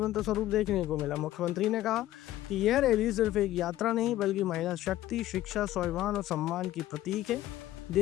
स्वरूप देखने को मिला। मुख्यमंत्री ने कहा कि यह रैली सिर्फ एक यात्रा नहीं बल्कि महिला शक्ति, शिक्षा, स्वाभिमान और सम्मान की प्रतीक है।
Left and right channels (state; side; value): quieter; right; 14.4 dB